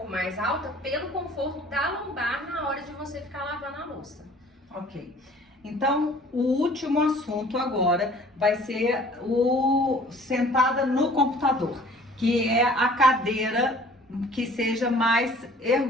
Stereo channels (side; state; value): both; normal; correlation 0.51